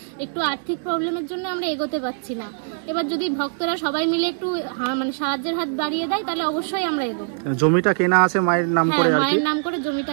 একটু আর্থিক প্রবলেমের জন্য আমরা এগোতে পারছি না। এবার যদি ভক্তরা সবাই মিলে একটু মানে সাহায্যের হাত বাড়িয়ে দেয় তাহলে অবশ্যই আমরা এগোবো। জমিটা কেনা আছে মায়ের নাম করে আর কি, মায়ের নাম করে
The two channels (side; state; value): left; silent; digital silence